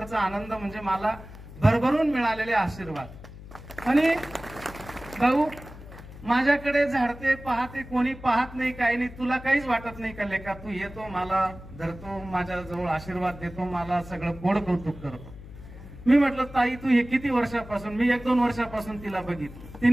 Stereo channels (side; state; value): left; noise; hum, 16 dB below the sound